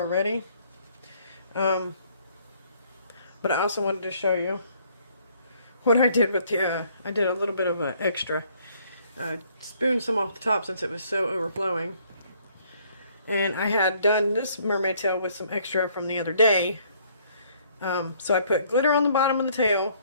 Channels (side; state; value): both; inverted; correlation -0.63